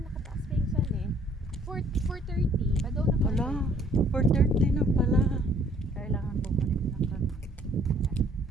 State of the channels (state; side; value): normal; both; correlation 0.61